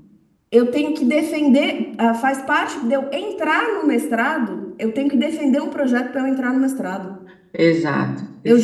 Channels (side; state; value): both; identical; correlation 1.00